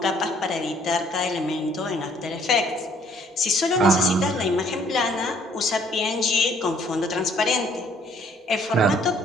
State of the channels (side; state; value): both; normal; correlation 0.62